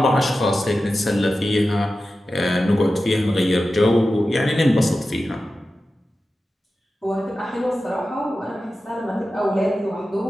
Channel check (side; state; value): both; normal; correlation 0.93